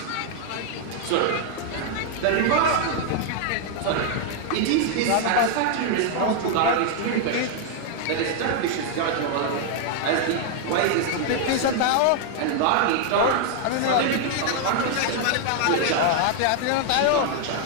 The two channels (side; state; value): both; different; correlation 0.00